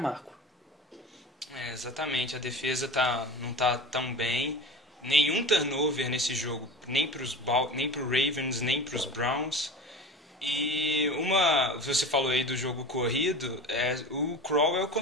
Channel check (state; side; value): normal; both; correlation 0.33